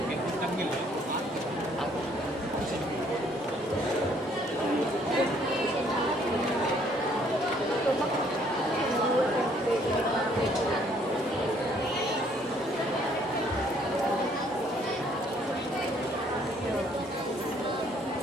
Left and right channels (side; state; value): both; normal; correlation 0.64